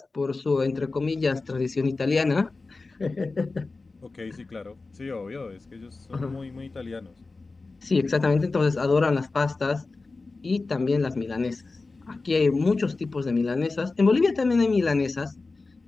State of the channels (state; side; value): quieter; right; 3.7 dB